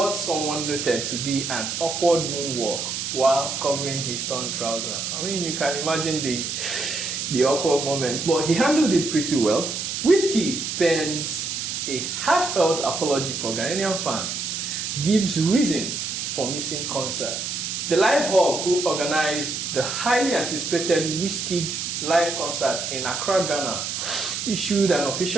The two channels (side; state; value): right; noise; hiss, 3 dB below the sound